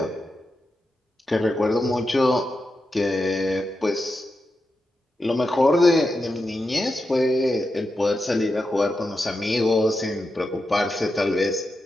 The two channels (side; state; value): both; normal; correlation 0.88